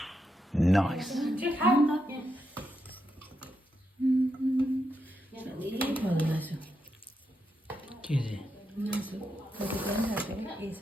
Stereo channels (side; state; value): both; normal; correlation 0.83